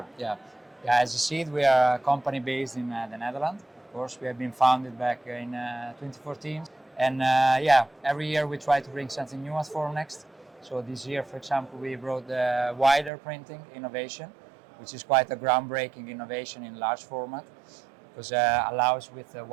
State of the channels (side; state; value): left; drops out; at 13.1 s